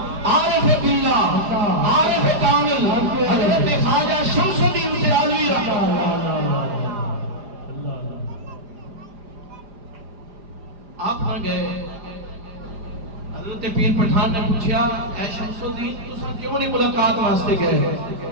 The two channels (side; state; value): left; late; 4.9 ms